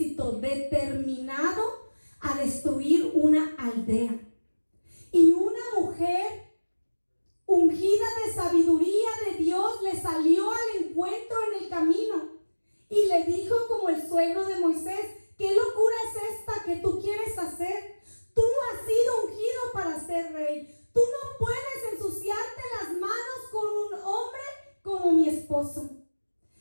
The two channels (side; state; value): both; inverted; correlation -1.00